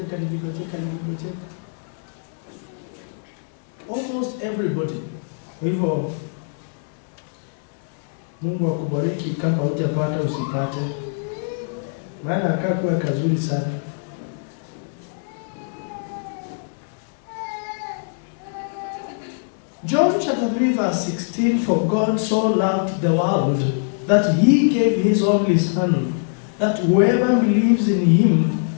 Almost everybody. Kwa hivyo Mungu akubariki kama hujapata usipate. Maana akakuwa kazuri sana. John chapter 3 verse 16, for God so loved the world that he gave his only son, that whoever believes in him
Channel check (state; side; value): silent; right; digital silence